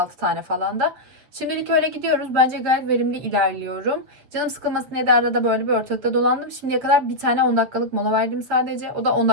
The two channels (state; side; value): late; left; 7.7 ms